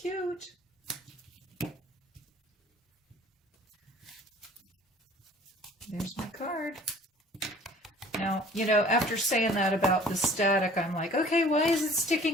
There's my card. Now, you know, after saying that about the static, I'm like, okay, why is it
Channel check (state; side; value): normal; both; correlation 0.50